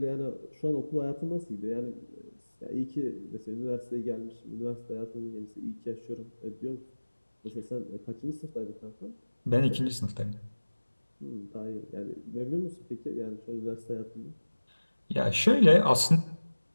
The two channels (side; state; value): both; inverted; correlation -1.00